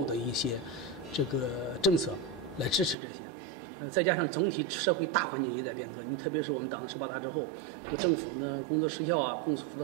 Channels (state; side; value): drops out; left; at 3.0 s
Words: 的一些这个政策来支持这些。再加上总体社会大环境也在变革，你特别是我们党的18大之后，这个政府呢工作时效啊、公府的